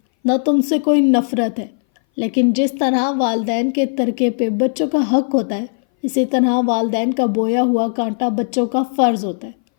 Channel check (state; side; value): silent; right; 61 dB below the other